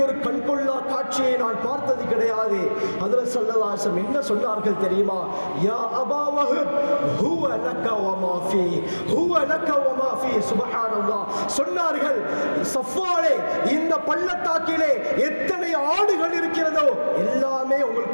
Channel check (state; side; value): inverted; both; correlation -1.00